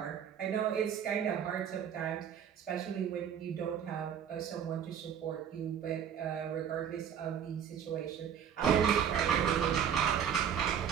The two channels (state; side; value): quieter; left; 8.5 dB